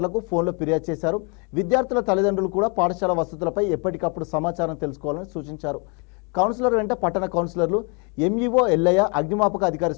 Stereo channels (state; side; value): quieter; right; 34.7 dB